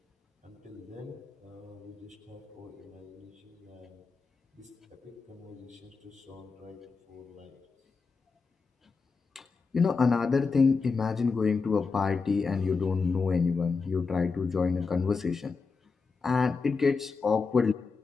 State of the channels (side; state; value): right; quieter; 4.7 dB